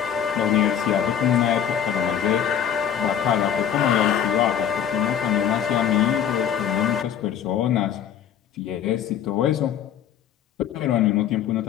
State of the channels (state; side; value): quieter; right; 9.1 dB